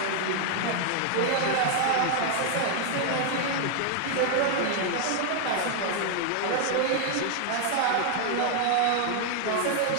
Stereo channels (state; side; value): different; both; correlation 0.00